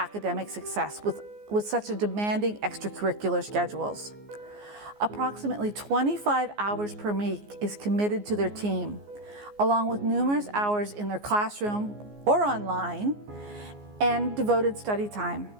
success with such a demanding extracurricular schedules. Approximately 25 hours per week is committed to their team, along with numerous hours in their classroom or online and devoted study time.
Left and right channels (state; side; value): late; left; 14 ms